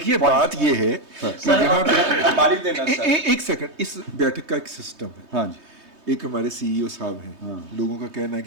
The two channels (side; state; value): left; late; 3.2 ms